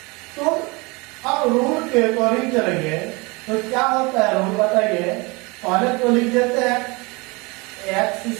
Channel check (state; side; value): quieter; left; 26.7 dB